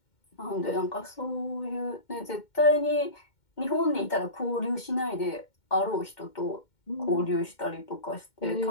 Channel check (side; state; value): right; late; 2.1 ms